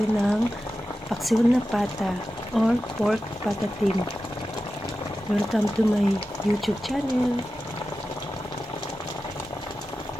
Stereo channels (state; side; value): normal; both; correlation 0.93